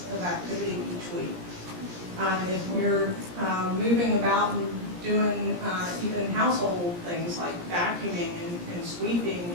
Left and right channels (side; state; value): left; late; 17 ms